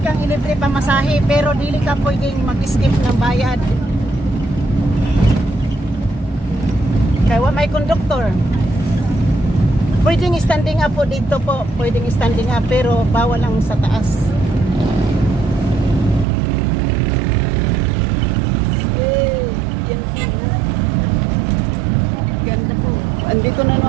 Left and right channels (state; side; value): drops out; left; at 16.2 s